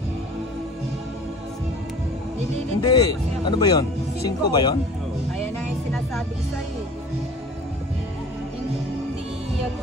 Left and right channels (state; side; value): normal; both; correlation 0.44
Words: Nililito Hindi. ko kasi ako. Ano ba yon? 5 ba yon? Ayan na yung sinasabi ko sa'yo. Hindi